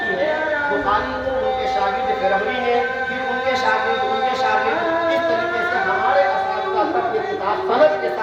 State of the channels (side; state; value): both; identical; correlation 1.00